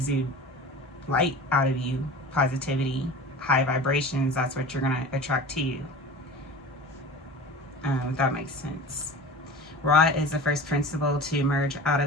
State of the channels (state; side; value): normal; both; correlation 0.36